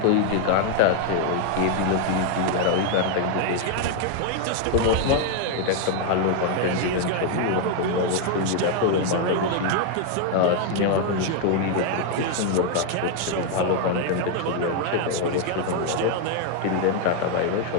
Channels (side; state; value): both; different; correlation 0.00